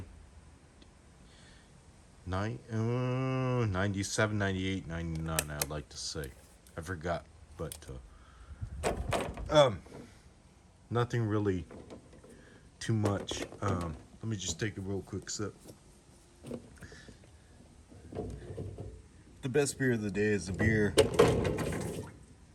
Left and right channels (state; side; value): identical; both; correlation 1.00